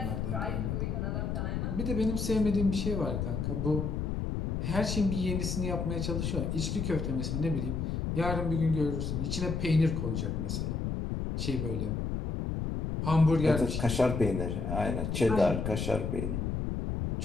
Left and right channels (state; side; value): noise; left; rumble, 1 dB below the sound